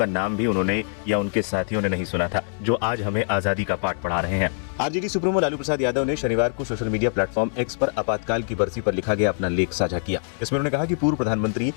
नाम भी उन्होंने या उनके साथियों ने नहीं सुना था, जो आज हमें आजादी का पाठ पढ़ा रहे हैं। आरजेडी सुप्रीमो लालू प्रसाद यादव ने शनिवार को सोशल मीडिया प्लेटफॉर्म एक्स पर आपातकाल की बरसी पर लिखा गया अपना लेख साझा किया। इसमें उन्होंने कहा कि पूर्व प्रधानमंत्री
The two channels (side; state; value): right; silent; 63 dB below the other